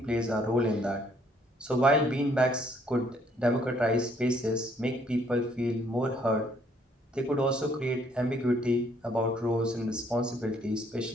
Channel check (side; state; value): both; normal; correlation 0.66